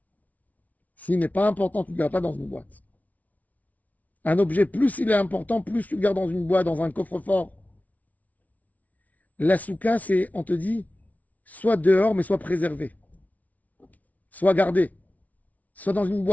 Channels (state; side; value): late; right; 0.072 ms